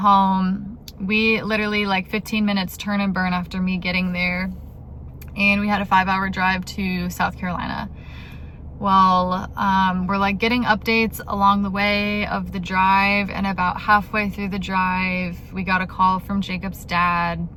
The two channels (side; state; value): both; identical; correlation 1.00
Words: We literally like 15 minutes turn and burn after me getting there. And we had a 5-hour drive to South Carolina. Well, we're like getting updates along the way of the drive. And about halfway through the drive, we got a call from Jacob's dad,